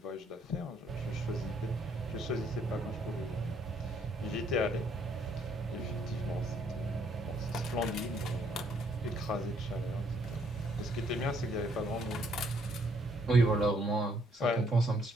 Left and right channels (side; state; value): both; normal; correlation 0.68